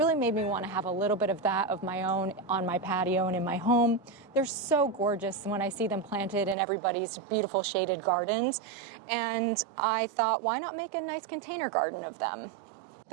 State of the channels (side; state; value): left; drops out; at 6.6 s